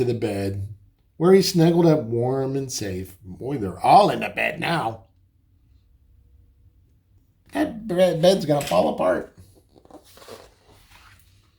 the bed, where he snuggled up warm and safe. Boy, they're all in the bed now. That bed's gonna fall apart.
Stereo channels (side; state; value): both; identical; correlation 1.00